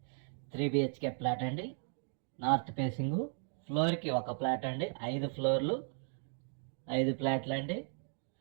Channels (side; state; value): left; silent; 54 dB below the other